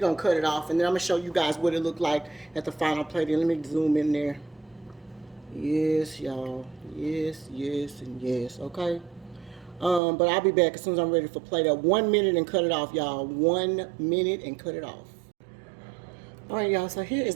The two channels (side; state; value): left; drops out; at 10.0 s